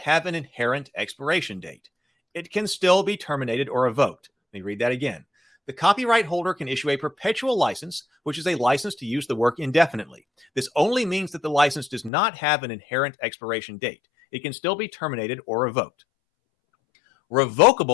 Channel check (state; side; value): drops out; right; at 12.1 s